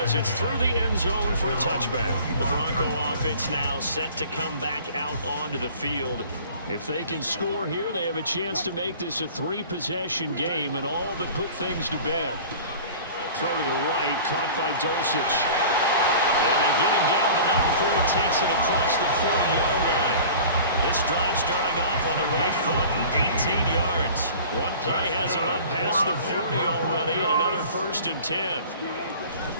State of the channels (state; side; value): inverted; both; correlation -0.43